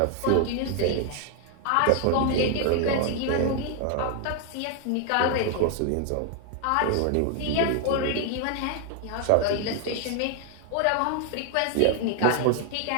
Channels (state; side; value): different; both; correlation 0.00